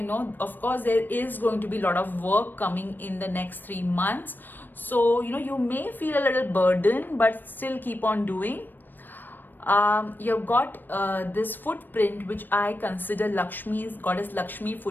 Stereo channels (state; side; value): late; right; 0.092 ms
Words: know, of course there is going to be a lot of work coming in the next 3 months. So, you know, you may feel a little burden, but still keep on doing. You've got this footprint, which I consider Lakshmi's, goddess Lakshmi